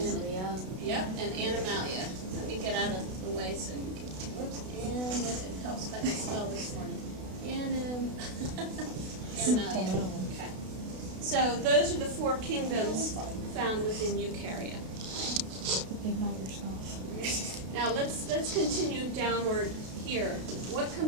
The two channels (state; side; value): late; left; 32 ms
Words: Yep, and animalia. Let me get out of the way so you can, whoops, and it helps if I can spell this morning. Animalia. Okay. So those are the 4 kingdoms found within eukarya. Ignite yourself. Now let's continue downward here. What